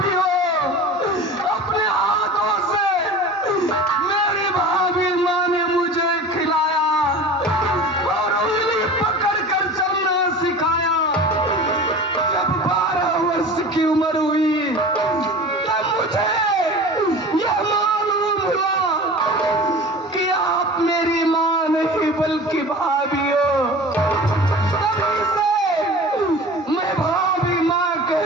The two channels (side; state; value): both; normal; correlation 0.37